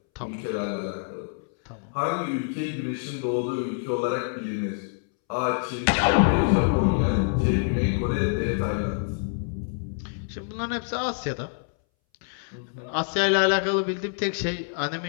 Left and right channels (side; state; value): right; silent; 61 dB below the other